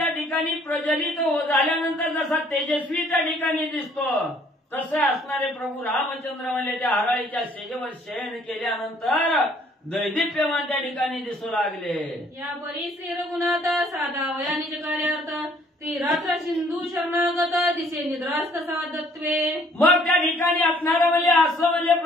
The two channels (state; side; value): normal; both; correlation 0.61